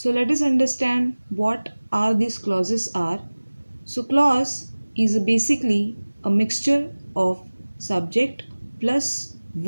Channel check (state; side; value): inverted; both; correlation -1.00